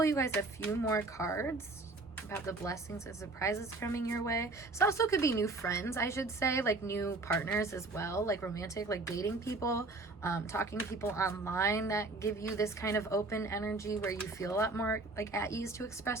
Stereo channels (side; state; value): left; quieter; 3.3 dB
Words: you guys a few more cards about the blessings and surprises coming your way. This also could be new friends, I should say, like new partners as well, like romantic, like dating people, talking to people online that give you this kind of open energy where you feel a lot more like at ease to